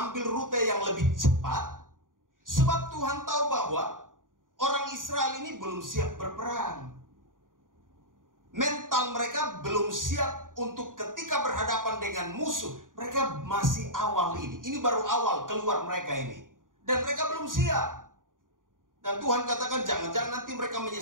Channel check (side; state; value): left; late; 0.89 ms